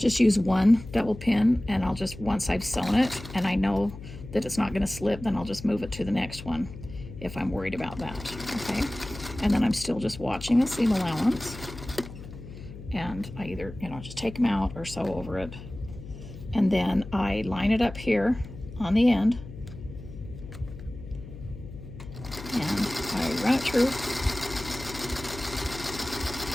use one double pin, and I'll just, once I've sewn it and I know that it's not going to slip, then I'll just move it to the next one if I'm worried about that, okay? And then I'm still just watching the seam allowance, and I either, just take them out or sew over it. And then I line it up here on the end, and I run it through.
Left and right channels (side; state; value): left; noise; hum, 13 dB below the sound